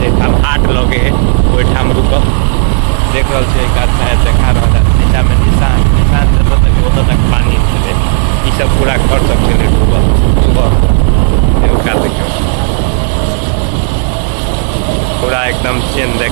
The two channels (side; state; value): left; silent; 56 dB below the other